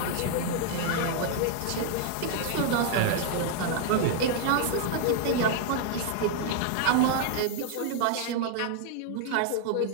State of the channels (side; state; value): both; different; correlation -0.01